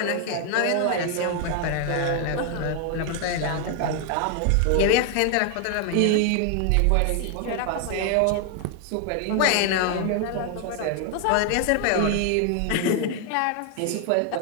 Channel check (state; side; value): different; both; correlation 0.00